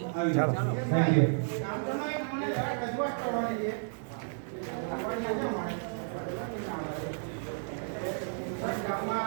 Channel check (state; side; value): silent; left; 56 dB below the other